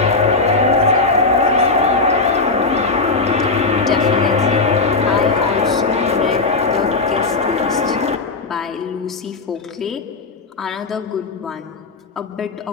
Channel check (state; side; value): quieter; right; 3.8 dB